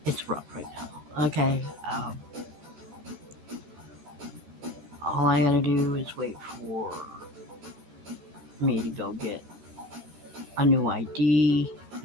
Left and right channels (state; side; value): late; left; 13 ms